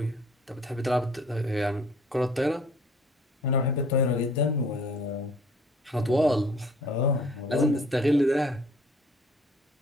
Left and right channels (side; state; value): both; normal; correlation 0.55